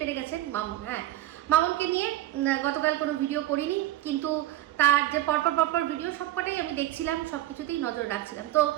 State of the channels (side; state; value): left; quieter; 14.6 dB